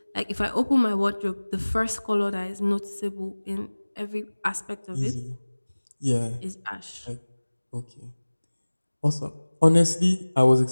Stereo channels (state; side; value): inverted; both; correlation -1.00